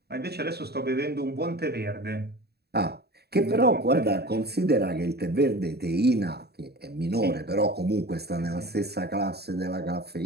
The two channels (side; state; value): left; late; 0.47 ms